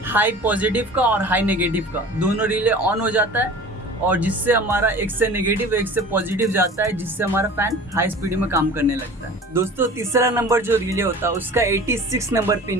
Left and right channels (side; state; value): both; normal; correlation 0.41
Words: हाई पॉजिटिव का और हाई नेगेटिव का दोनों रिले ऑन हो जाता है, और जिससे हमारा एक से नेगेटिव एक से पॉजिटिव जाता है, जिससे हमारा फ़ैन हाई स्पीड में काम करने लगता है। दोस्तों तीसरा नंबर जो रिले होता है उसका 86 नंबर